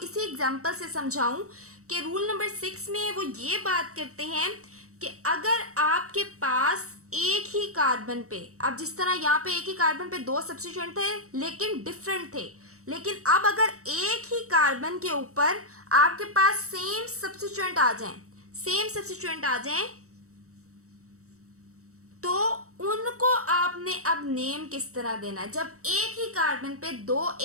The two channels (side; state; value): left; late; 0.65 ms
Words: एग्जांपल से समझाऊं कि रूल नंबर 6 में वो ये बात करते हैं कि अगर आपके पास एक ही कार्बन पे, अब जिस तरह यहाँ पे एक ही कार्बन पे 2 सब्स्टिट्यूएंट थे लेकिन डिफरेंट थे, लेकिन अब अगर एक ही कार्बन के ऊपर आपके पास सेम सब्स्टिट्यूएंट आ जाएं, तो उनको आपने अब नेम किस तरह देना है? जब एक ही कार्बन पे 2